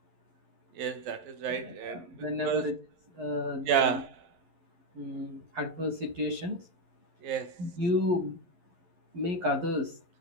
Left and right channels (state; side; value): late; left; 11 ms